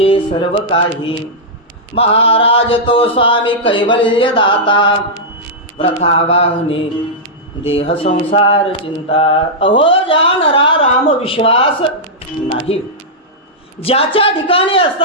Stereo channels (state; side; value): normal; both; correlation -0.09